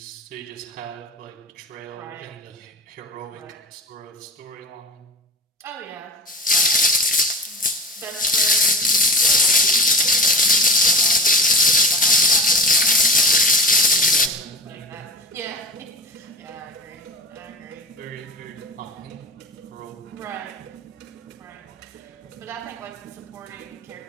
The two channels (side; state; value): both; normal; correlation 0.33